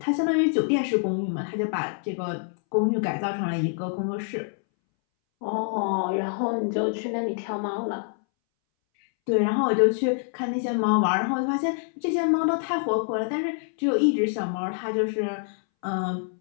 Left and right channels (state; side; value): silent; right; 61 dB below the other